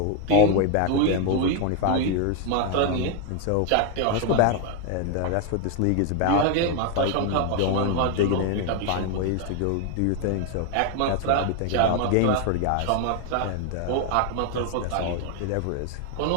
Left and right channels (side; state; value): both; different; correlation 0.01